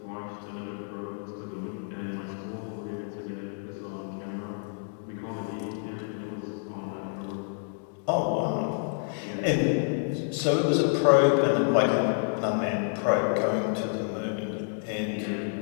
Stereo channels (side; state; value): right; silent; 59 dB below the other